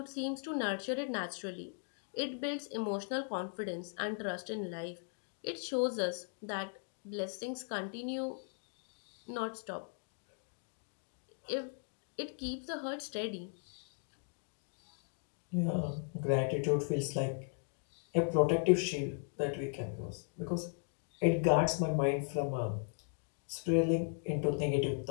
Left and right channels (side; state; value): right; silent; 53 dB below the other